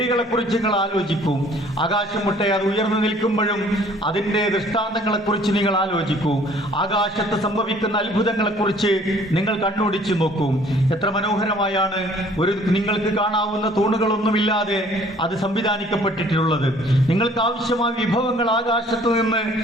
കുറിച്ച് നിങ്ങൾ ആലോചിക്കൂ. ആകാശം മുട്ടെ അത് ഉയർന്നു നിൽക്കുമ്പോഴും അതിന്റെ ദൃഷ്ടാന്തങ്ങളെ കുറിച്ച് നിങ്ങൾ ആലോചിക്കൂ. ആകാശത്ത് സംഭവിക്കുന്ന അത്ഭുതങ്ങളെ കുറിച്ച് നിങ്ങൾ കണ്ണോടിച്ചു നോക്കൂ. എത്ര മനോഹരമായാണ് നിങ്ങൾക്ക് കാണാവുന്ന തൂണുകളൊന്നുമില്ലാതെ അത് സംവിധാനിക്കപ്പെട്ടിട്ടുള്ളത്. നിങ്ങൾക്ക് ആവശ്യമായ വിഭവങ്ങൾ ആകാശത്ത് നിന്ന്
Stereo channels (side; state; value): both; normal; correlation 0.56